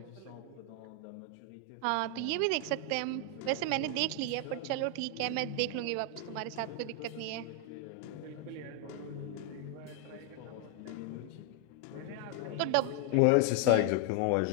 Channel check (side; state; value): both; different; correlation 0.00